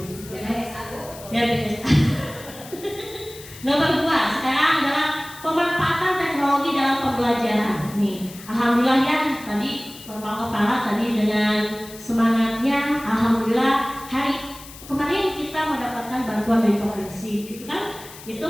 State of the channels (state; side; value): noise; left; hiss, 17 dB below the sound